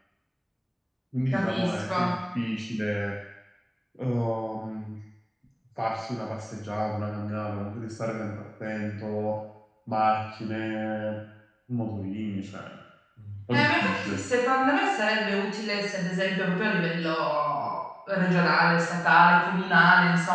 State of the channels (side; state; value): both; identical; correlation 1.00